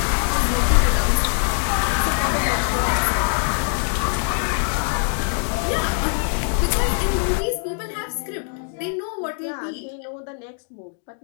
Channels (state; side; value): silent; right; 59 dB below the other